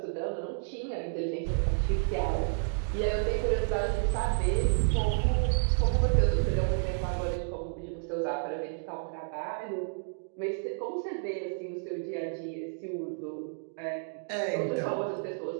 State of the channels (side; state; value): left; silent; digital silence